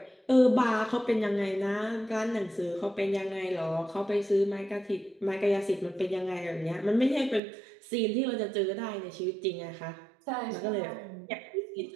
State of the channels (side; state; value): left; drops out; at 7.4 s